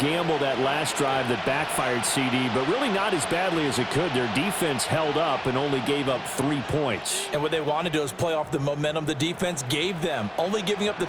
that last drive that backfired, CD, but really not as badly as it could. Their defense held up and only gave up 3 points. And what they want to do is play off the momentum the defense gave them. Only giving up the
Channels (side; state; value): both; identical; correlation 1.00